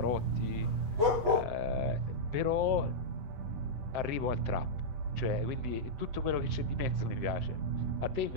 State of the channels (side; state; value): left; late; 8.3 ms